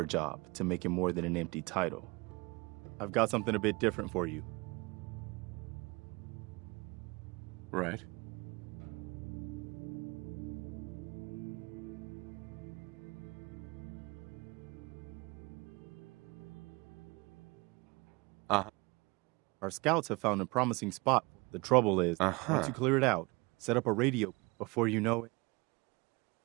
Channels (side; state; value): left; quieter; 26.2 dB